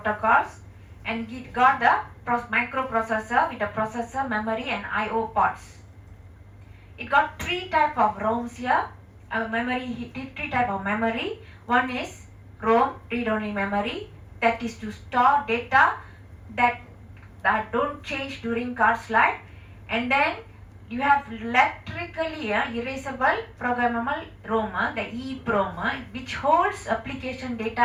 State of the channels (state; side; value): identical; both; correlation 1.00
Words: and it got the microprocessor with the processor, memory, and I/O ports. It got three type of ROMs here. Three type of memory. One is ROM, read-only memory, that is to store data that don't change during card's life. And then you have electrically erasable programmable ROM, the EEPROM, which holds application data